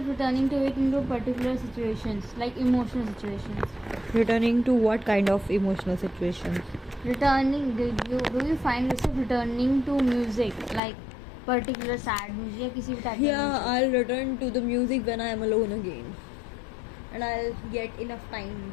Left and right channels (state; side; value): drops out; right; at 10.8 s